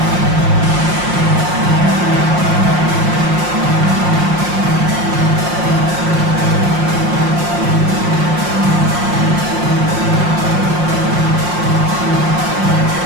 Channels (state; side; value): late; left; 5.6 ms